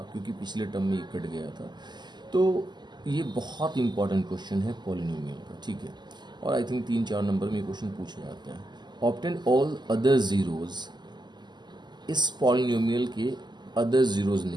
क्योंकि पिछले टर्म में ये कट गया था, तो ये बहुत इंपॉर्टेंट क्वेश्चन है पॉलिनोमियल का। ठीक है, और आई थिंक 3-4 नंबर में ये क्वेश्चन पूछा जाता है। ऑब्टेन ऑल अदर जीरोज, इस पॉलिनोमियल के अदर जीरोज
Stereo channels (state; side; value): late; left; 0.21 ms